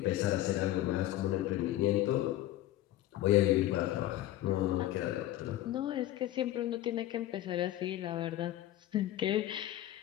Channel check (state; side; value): quieter; right; 14.2 dB